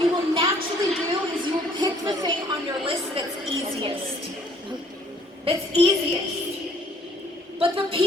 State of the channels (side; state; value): both; normal; correlation 0.61